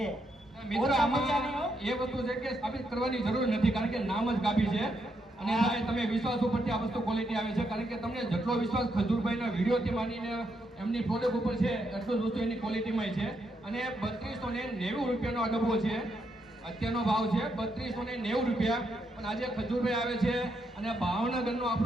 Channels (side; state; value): both; normal; correlation 0.79